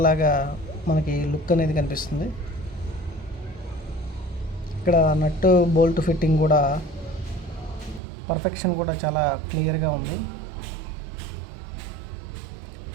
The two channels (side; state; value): left; drops out; at 8.0 s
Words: లాగా మనకి లుక్ అనేది కనిపిస్తుంది. ఇక్కడ నట్టు బోల్ట్ ఫిట్టింగ్ కూడా పర్ఫెక్షన్ కూడా చాలా క్లియర్గా ఉంది.